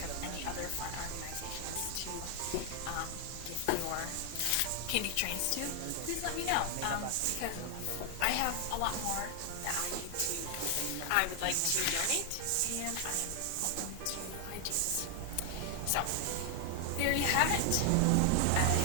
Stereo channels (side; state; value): both; different; correlation 0.00